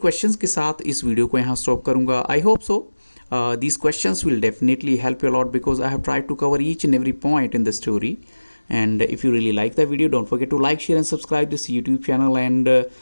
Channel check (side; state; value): both; inverted; correlation -1.00